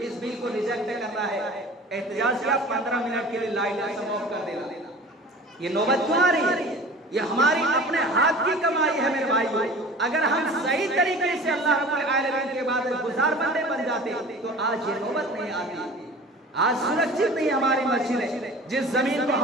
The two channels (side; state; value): both; normal; correlation 0.41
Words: اس بل کو ریجیکٹ کرنا ہے، احتجاج کیا 15 منٹ کے لیے لائٹ آف کر دینا۔ یہ نوبت کیوں آ رہی ہے؟ یہ ہماری اپنے ہاتھ کی کمائی ہے میرے بھائیو۔ اگر ہم صحیح طریقے سے اللہ رب العالمین کے بعد گزار بندے بن جاتے تو آج یہ نوبت نہیں آتی۔ آج سرکشت نہیں ہماری مسجدیں۔ جس زمین کو